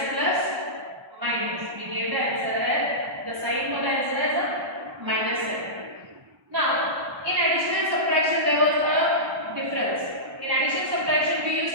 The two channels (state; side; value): late; left; 1.1 ms